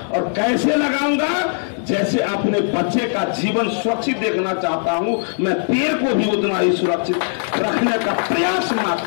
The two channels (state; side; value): silent; right; digital silence